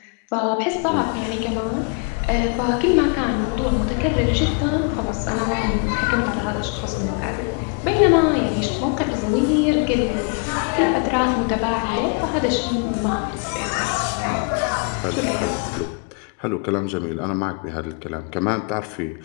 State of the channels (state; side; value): quieter; right; 35.6 dB